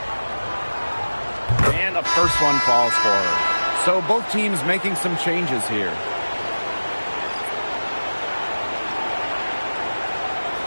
And the first one falls for her. So both teams making some changes here.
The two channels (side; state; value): both; inverted; correlation -1.00